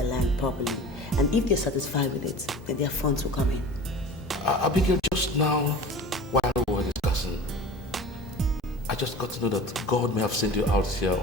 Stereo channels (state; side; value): normal; both; correlation 0.38